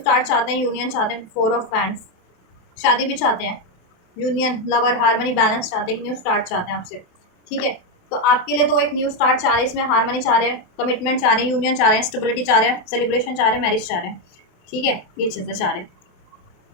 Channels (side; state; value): right; late; 27 ms